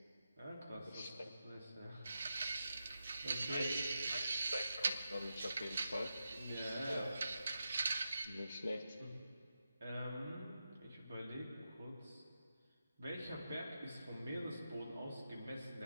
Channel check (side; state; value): both; inverted; correlation -0.88